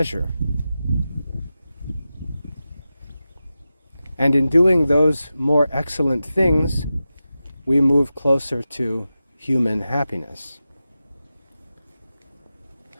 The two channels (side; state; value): both; inverted; correlation -0.93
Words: And in doing those more excellent things, we move closer to human happiness.